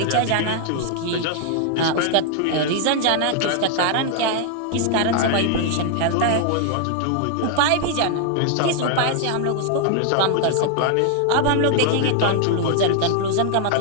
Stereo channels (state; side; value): different; both; correlation 0.00